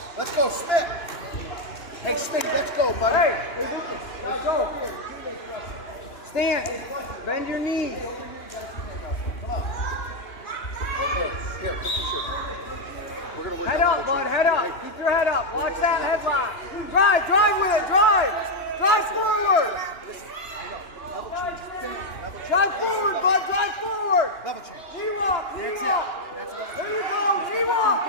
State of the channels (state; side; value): late; right; 2.9 ms